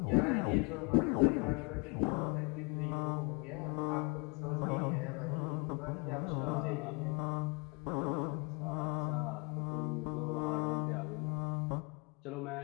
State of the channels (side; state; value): right; quieter; 31.6 dB